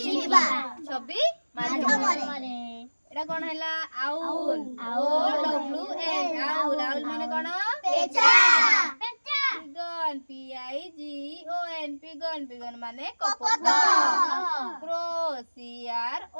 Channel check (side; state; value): both; inverted; correlation -1.00